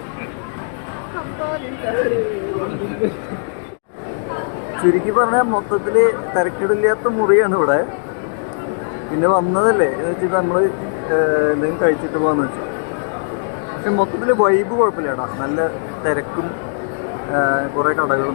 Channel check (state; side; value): silent; right; digital silence